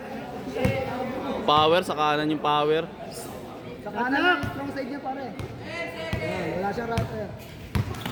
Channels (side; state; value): both; identical; correlation 1.00